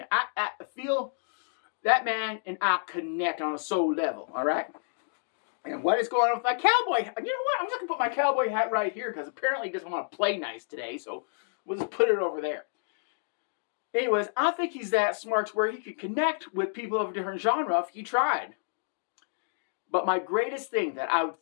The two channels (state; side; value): silent; right; digital silence